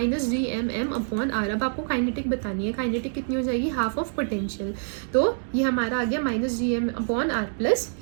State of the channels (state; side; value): silent; left; digital silence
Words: gmm अपॉन आर। अब आपको kinetic बतानी है, kinetic कितनी हो जाएगी, हाफ ऑफ potential। तो ये हमारा आ गया माइनस gm upon R plus